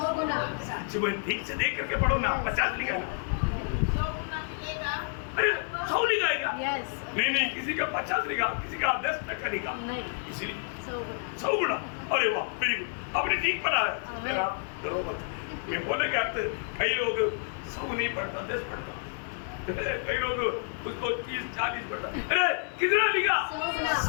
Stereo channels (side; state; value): right; silent; 58 dB below the other